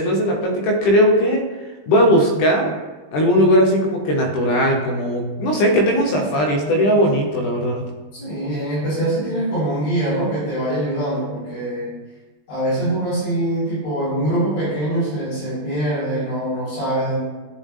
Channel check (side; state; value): right; late; 20 ms